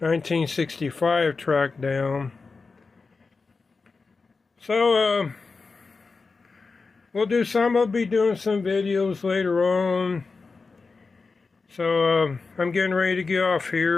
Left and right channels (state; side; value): quieter; right; 4.3 dB